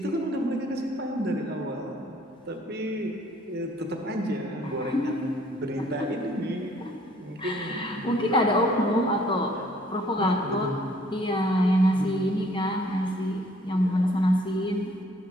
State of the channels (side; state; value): both; normal; correlation 0.60